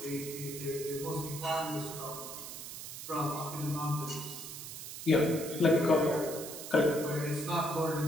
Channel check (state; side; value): noise; right; hiss, 9 dB below the sound